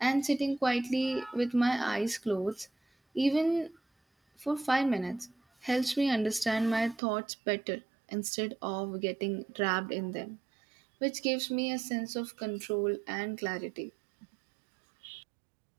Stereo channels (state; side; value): drops out; left; at 7.0 s